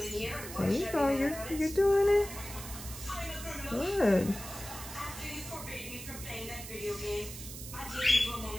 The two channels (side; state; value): right; noise; hiss, 11 dB below the sound